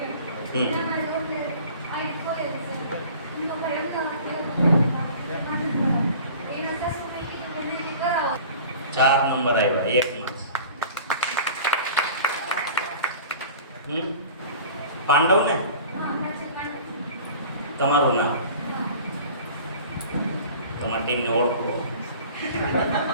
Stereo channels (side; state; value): both; inverted; correlation -0.43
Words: ચાર નંબર આવ્યા એકમાં. પાંડવ ને તમારું નામ, તમારી ટીમને ઓળખો.